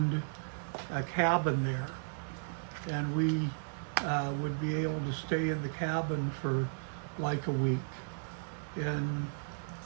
a cabin there. And we would be able to stay in the cabin for like a week. And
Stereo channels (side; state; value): left; silent; digital silence